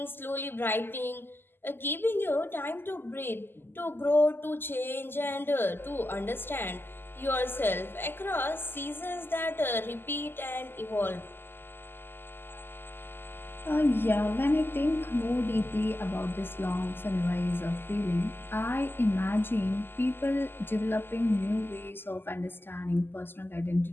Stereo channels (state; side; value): late; right; 0.10 ms